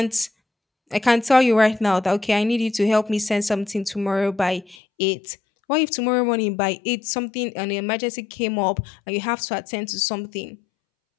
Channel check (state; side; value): drops out; right; at 4.8 s